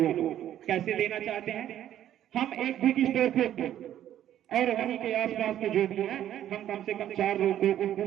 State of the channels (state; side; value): quieter; left; 11.5 dB